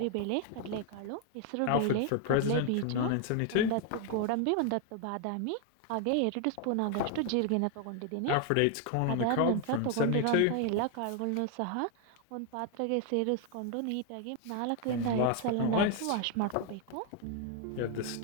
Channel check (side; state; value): both; different; correlation 0.01